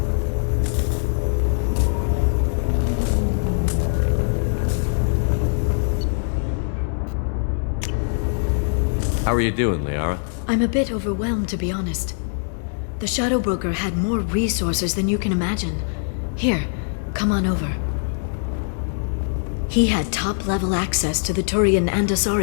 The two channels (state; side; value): silent; right; 64 dB below the other